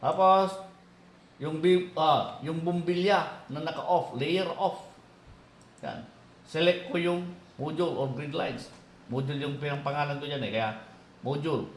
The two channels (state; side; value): identical; both; correlation 1.00